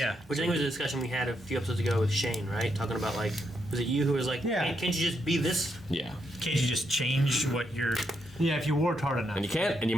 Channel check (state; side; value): normal; both; correlation 0.79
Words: Which I think was a discussion we had a few episodes ago with Shane, right? Talking about like, was it you who was like, Yeah. can't you just be this? Yeah. Can't you just change what you're? Yeah, if you worked hard enough. And you can't, and you